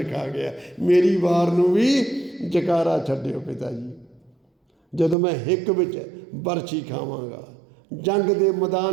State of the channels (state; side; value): drops out; left; at 5.2 s